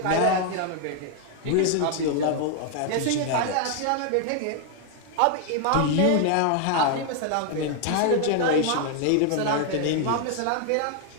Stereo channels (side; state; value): both; different; correlation 0.00